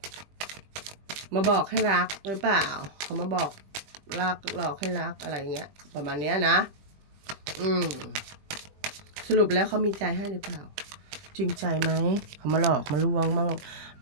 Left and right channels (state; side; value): late; left; 20 ms